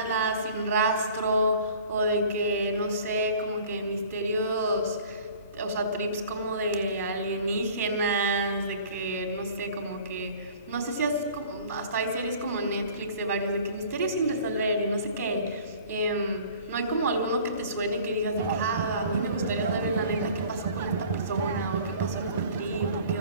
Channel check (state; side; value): inverted; both; correlation -0.47